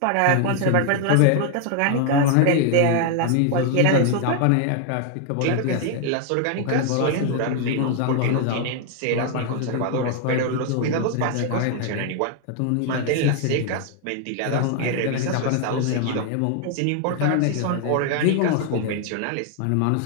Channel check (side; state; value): both; different; correlation 0.00